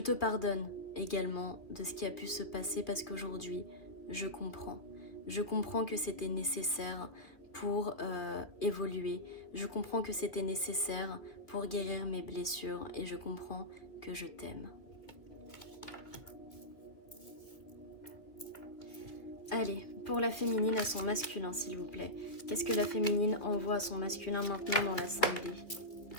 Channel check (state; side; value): late; right; 2.3 ms